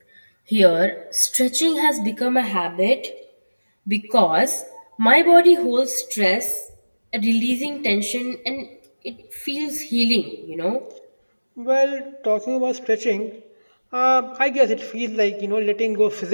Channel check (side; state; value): both; inverted; correlation -1.00